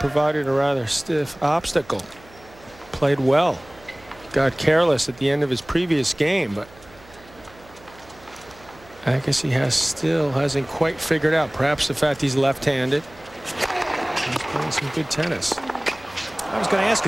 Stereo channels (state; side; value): noise; right; hum, 24 dB below the sound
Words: a rather stiff obstacle. Played well, got careless at the end of his previous game, but Agassi still hasn't quite figured out. Perhaps the fact he's left-handed. He's playing some good tennis. I was going to ask